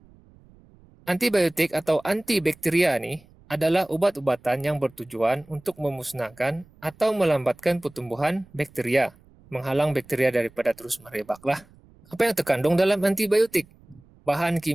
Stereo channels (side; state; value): right; noise; rumble, 27 dB below the sound